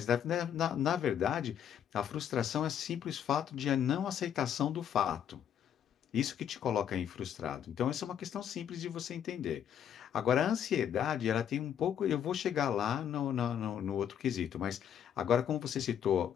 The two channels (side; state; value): right; quieter; 9.3 dB